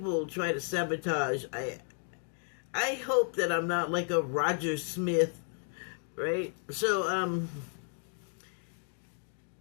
try to sabotage. I hope that I'm not like a Roger Smith, right? So,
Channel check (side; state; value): right; silent; 56 dB below the other